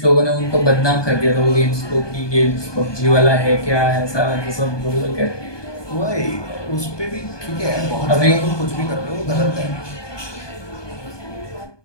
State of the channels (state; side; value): late; right; 1.2 ms